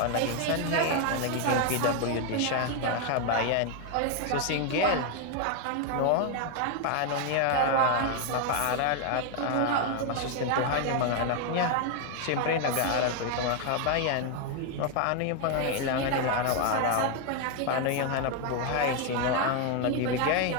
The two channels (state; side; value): different; both; correlation 0.01